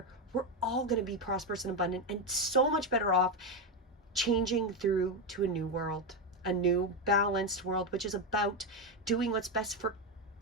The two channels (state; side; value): normal; both; correlation 0.09